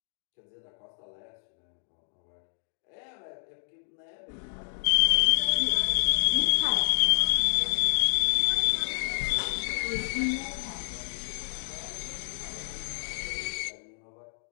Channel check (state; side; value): silent; right; digital silence